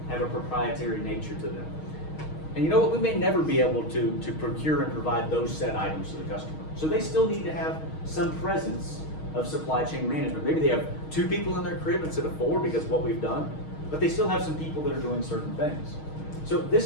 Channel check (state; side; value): late; right; 6.4 ms